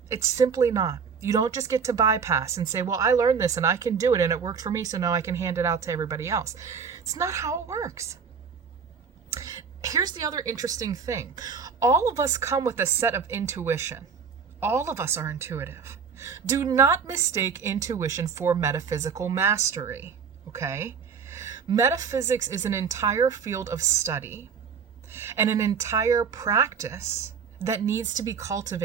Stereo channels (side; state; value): left; quieter; 6.3 dB